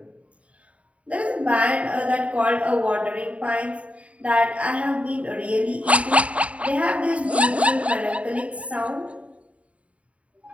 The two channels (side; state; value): left; late; 0.065 ms